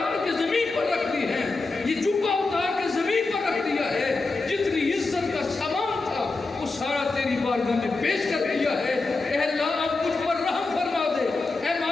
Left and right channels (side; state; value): right; quieter; 3.6 dB